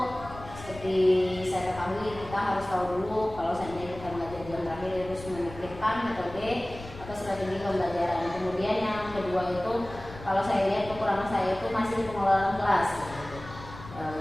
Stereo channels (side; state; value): left; noise; rumble, 15 dB below the sound